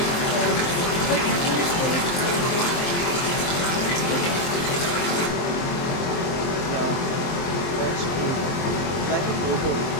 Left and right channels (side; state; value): right; late; 23 ms